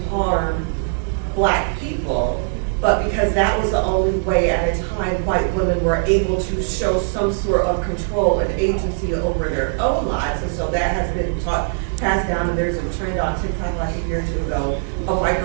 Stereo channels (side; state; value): left; silent; digital silence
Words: harm Black people, but because that was the only way at a time white women were able to show some sort of control and agency over their own lives. And so that has been passed down, and there's a trend on TikTok like a year or two ago of white